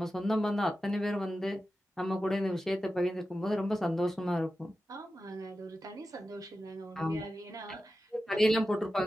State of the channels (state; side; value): normal; both; correlation 0.92